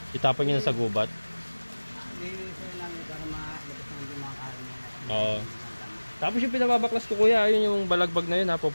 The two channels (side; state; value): both; inverted; correlation -1.00